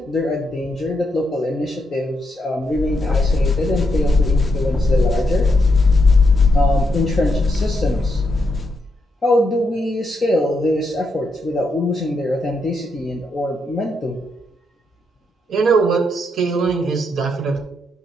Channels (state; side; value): normal; both; correlation 0.81